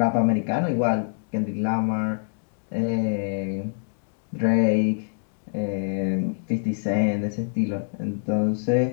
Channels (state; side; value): silent; right; digital silence